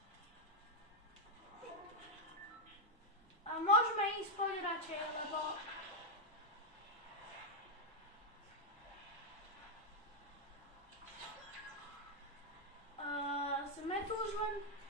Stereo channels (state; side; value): normal; both; correlation 0.00